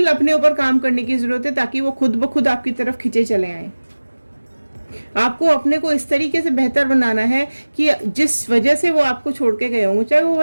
अपने ऊपर काम करने की ज़रूरत है, ताकि वो खुद ब खुद आपकी तरफ खिंचे चले आए, आपको अपने को इस तरीके से बेहतर बनाना है कि जिस वजह से वो आपको छोड़ के गए होंगे, चाहे वो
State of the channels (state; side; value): inverted; both; correlation -1.00